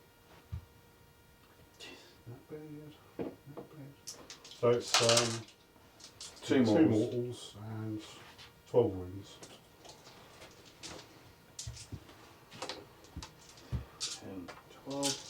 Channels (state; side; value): identical; both; correlation 1.00